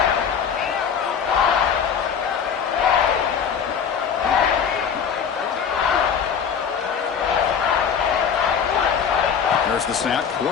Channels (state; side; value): quieter; right; 7.2 dB